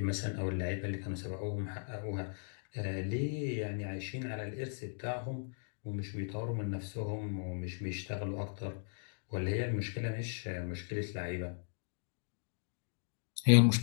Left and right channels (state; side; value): silent; right; digital silence